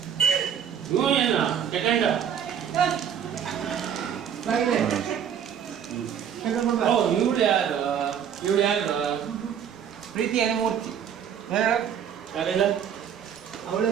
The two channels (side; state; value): left; quieter; 8.5 dB